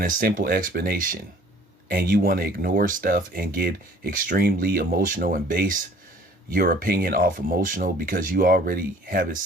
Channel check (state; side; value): normal; both; correlation 0.54